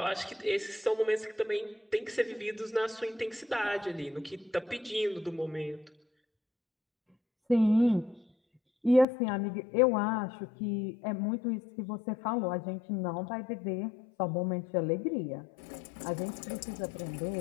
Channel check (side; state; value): right; drops out; at 9.1 s